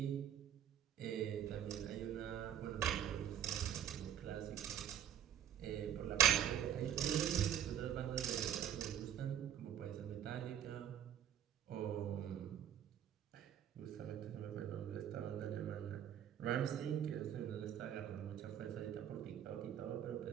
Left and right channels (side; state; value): left; quieter; 10.0 dB